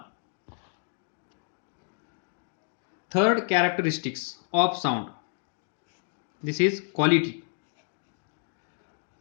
Third characteristics of sound, this is quality.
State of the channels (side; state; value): right; silent; digital silence